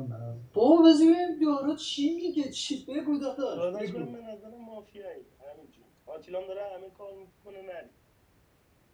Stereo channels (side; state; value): both; identical; correlation 1.00